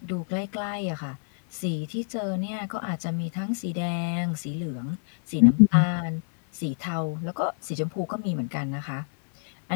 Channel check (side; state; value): right; silent; digital silence